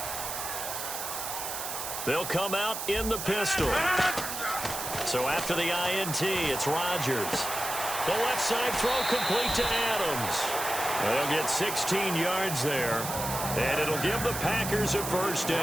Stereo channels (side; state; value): right; noise; hiss, 5 dB below the sound